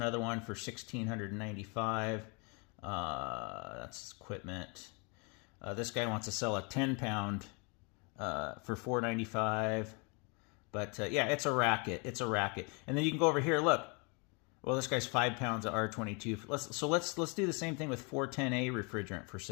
one for $1,695. That's equipment. This guy wants to sell a 10-pound for $495. But yeah, it's a racket. It's a racket. And then you can go over here. Look. Well, this guy's 5 pounds of R22. Let's do the same thing with 410A refrigerant for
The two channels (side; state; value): right; quieter; 32.8 dB